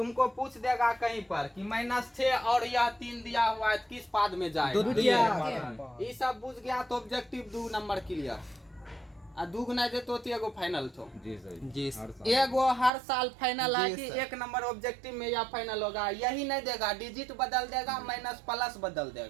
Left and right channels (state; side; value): drops out; left; at 12.9 s